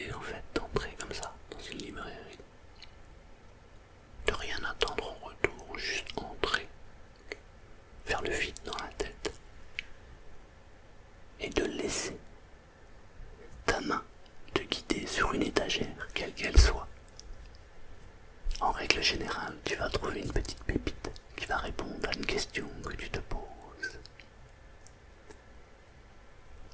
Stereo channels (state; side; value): identical; both; correlation 1.00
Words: en fait d'entrer comme ça dans une librairie, de rien attendre en retour, juste entrer, faire le vide dans la tête et de laisser ta main te guider sur une étagère, quelle qu'elle soit. En règle générale, tu vas trouver une petite pépite qui va répondre à une question que tu te poses.